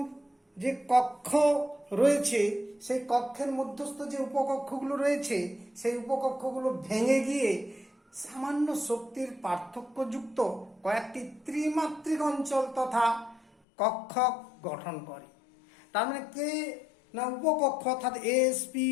যে কক্ষ রয়েছে, সেই কক্ষের মধ্যস্থ যে উপকক্ষগুলো রয়েছে, সেই উপকক্ষগুলো ভেঙে গিয়ে সামান্য শক্তির পার্থক্যযুক্ত কয়েকটি ত্রিমাত্রিক অঞ্চল তথা কক্ষ গঠন করে। তার মানে কে না উপকক্ষ অর্থাৎ এস পি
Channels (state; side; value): drops out; right; at 13.5 s